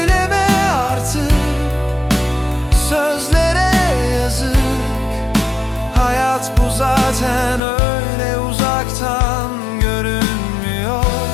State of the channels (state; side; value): drops out; right; at 7.6 s